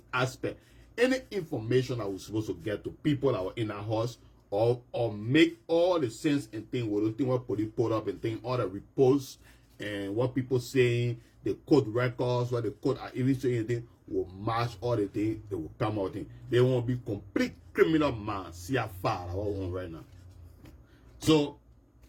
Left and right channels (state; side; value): identical; both; correlation 1.00